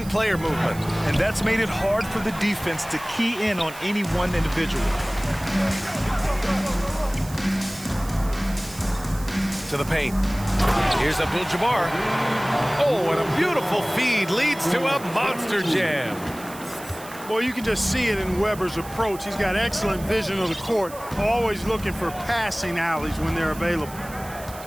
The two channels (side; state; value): right; noise; hiss, 17 dB below the sound